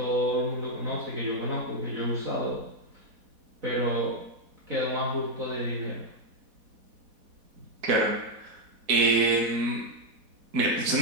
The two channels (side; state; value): left; late; 4.1 ms